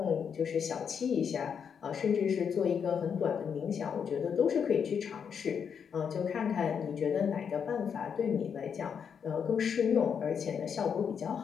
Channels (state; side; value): quieter; right; 7.1 dB